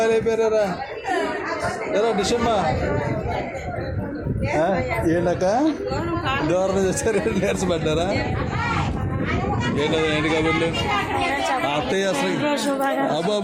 అయిపోయారా? ఎలా డిషమ్మా? ఏంటక్క దూరం చేశారు, నీరసం పడ్డారా? ఏంటది ఏంటి కబుర్లు? అత్తయ్య అసలు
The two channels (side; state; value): both; identical; correlation 1.00